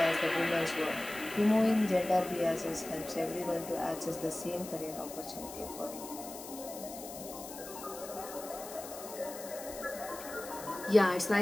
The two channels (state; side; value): noise; left; hiss, 12 dB below the sound